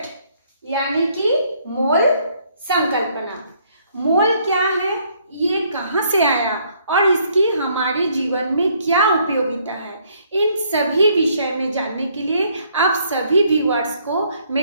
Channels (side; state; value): both; inverted; correlation -0.66